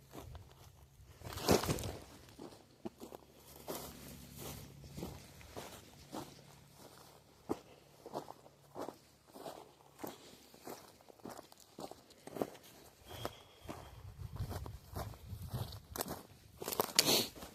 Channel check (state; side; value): identical; both; correlation 1.00